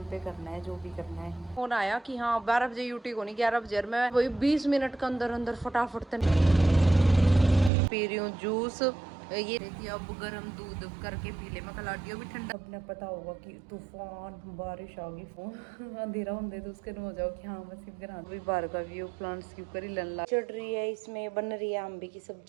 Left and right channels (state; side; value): drops out; left; at 7.7 s